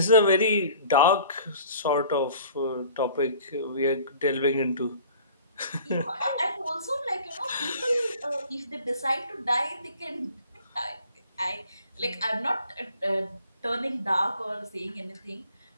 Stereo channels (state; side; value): inverted; both; correlation -0.48